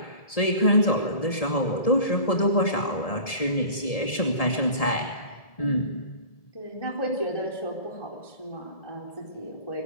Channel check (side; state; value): right; late; 1.7 ms